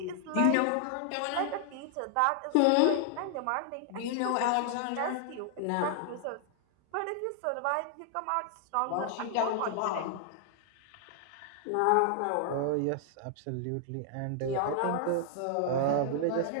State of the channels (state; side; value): different; both; correlation 0.00